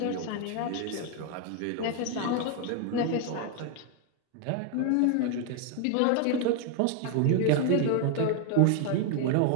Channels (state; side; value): different; both; correlation 0.00